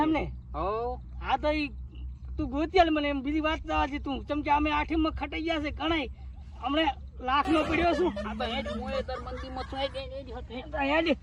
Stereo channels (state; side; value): identical; both; correlation 1.00